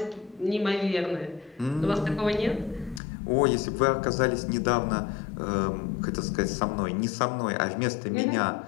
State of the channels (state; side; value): drops out; right; at 3.0 s